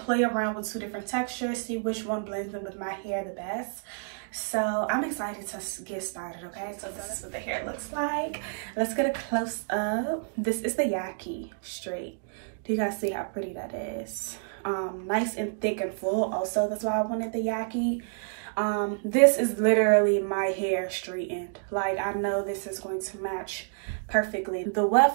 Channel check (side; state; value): left; silent; digital silence